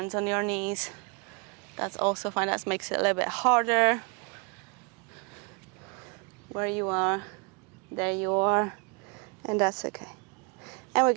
on your knees. That's also fine. That makes it a little bit harder. Where you are, there you are, and that's okay. And we're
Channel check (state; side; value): quieter; left; 33.2 dB